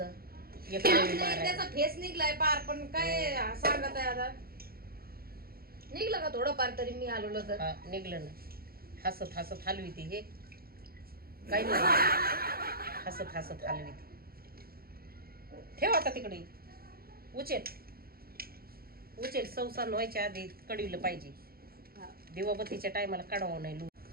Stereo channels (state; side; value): late; left; 0.44 ms